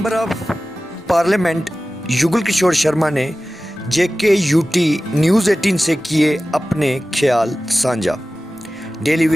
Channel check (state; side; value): normal; both; correlation 0.96